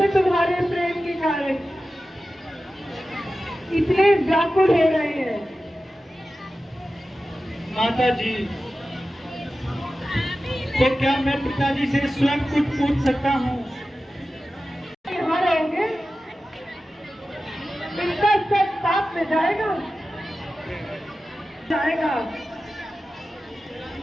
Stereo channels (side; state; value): both; normal; correlation 0.94